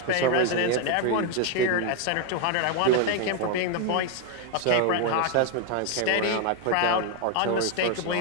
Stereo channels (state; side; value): different; both; correlation 0.01